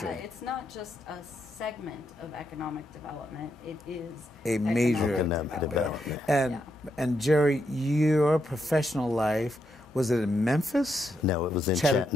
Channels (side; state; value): both; normal; correlation 0.81